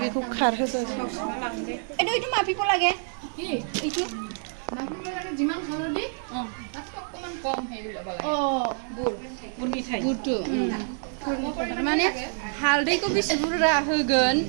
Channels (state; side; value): silent; left; 56 dB below the other